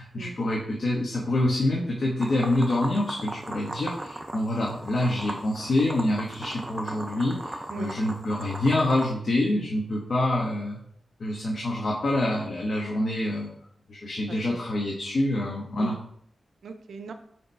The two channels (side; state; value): both; normal; correlation 0.88